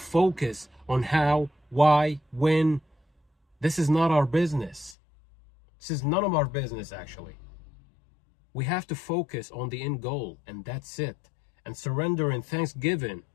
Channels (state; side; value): drops out; right; at 5.0 s